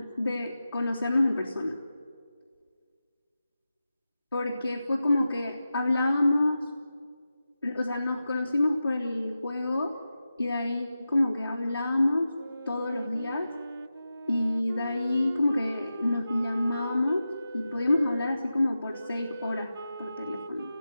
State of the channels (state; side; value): inverted; both; correlation -0.92